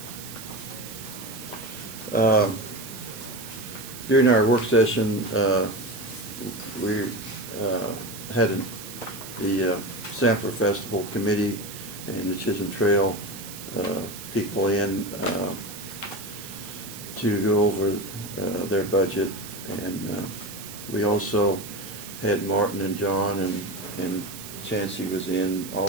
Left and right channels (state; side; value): noise; right; hiss, 12 dB below the sound